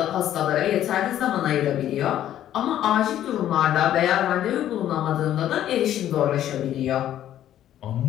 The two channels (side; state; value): right; quieter; 11.7 dB